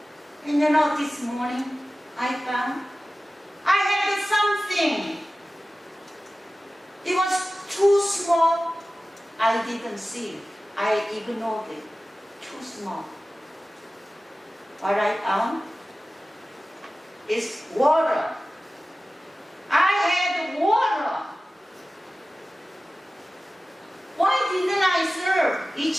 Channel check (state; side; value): normal; both; correlation 0.96